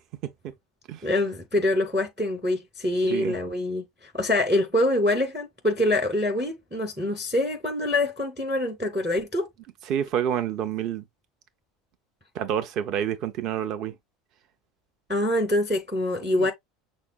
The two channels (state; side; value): normal; both; correlation 0.55